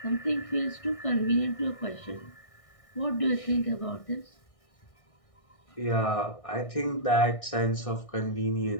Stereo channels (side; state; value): right; late; 1.6 ms